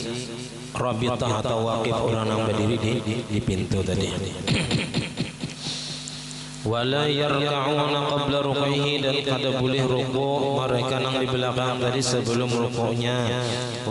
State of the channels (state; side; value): identical; both; correlation 1.00